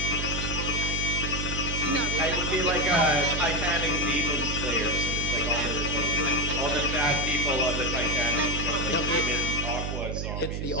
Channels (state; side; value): noise; right; hum, 3 dB below the sound